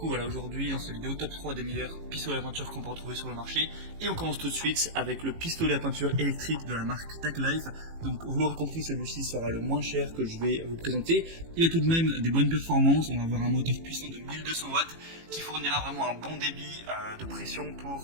voilà, aujourd'hui dans cette vidéo, top 3 des meilleurs pistolets à peinture qu'on peut retrouver sur le marché. Et on commence tout de suite avec le pistolet à peinture électrique de la marque TechLife. Donc vous l'aurez compris, celui-ci sera le moins cher que je vais vous présenter. Il a tout de même des bonnes performances, on va avoir un moteur puissant de 1200 watts qui fournira vraiment un bon débit de pression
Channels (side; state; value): left; late; 18 ms